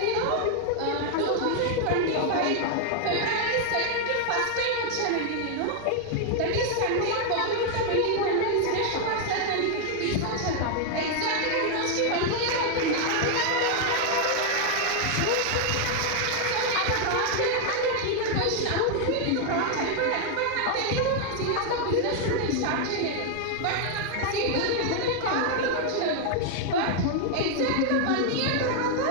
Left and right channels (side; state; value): both; different; correlation 0.00